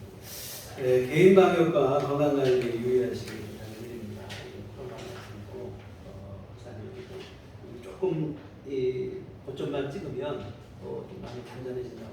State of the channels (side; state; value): both; identical; correlation 1.00